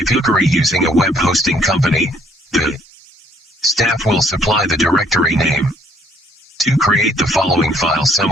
you're using a web hosting company, the staff will supply the directory name. 2. Create the following file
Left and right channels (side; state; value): both; normal; correlation 0.64